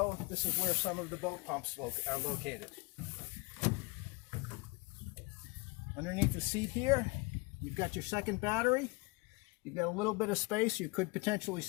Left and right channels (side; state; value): right; quieter; 27.0 dB